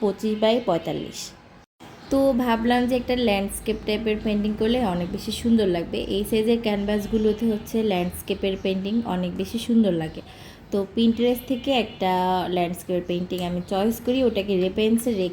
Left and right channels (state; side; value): identical; both; correlation 1.00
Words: তো ভাবলাম যে একটা ল্যান্ডস্কেপ টাইপের পেন্টিং করলে অনেক বেশি সুন্দর লাগবে। এই সাইজের ক্যানভাসগুলোতে ল্যান্ডস্কেপের পেন্টিং অনেক বেশি সুন্দর লাগে। তো পিন্টারেস্ট থেকে একটা ল্যান্ডস্কেপের পেন্টিং আমি চয়েস করি, ওটাকে রেফারেন্সে